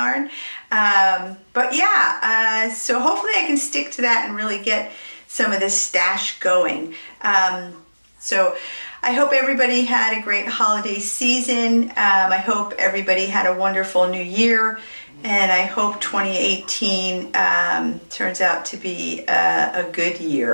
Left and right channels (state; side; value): inverted; both; correlation -1.00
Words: But yeah, so hopefully I can stick to that and really get some of this stash going. So I hope everybody had a great holiday season. I hope everybody had a wonderful new year, and I hope 2018 turns out to be a good